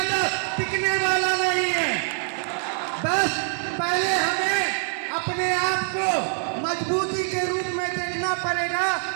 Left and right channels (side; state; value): left; silent; digital silence